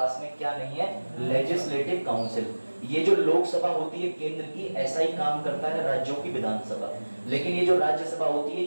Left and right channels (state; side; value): inverted; both; correlation -1.00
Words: में क्या नहीं है? Legislative council. ये जो लोकसभा होती है केंद्र की, ऐसा ही काम करता है राज्यों की विधानसभा, लेकिन ये जो राज्यसभा होती है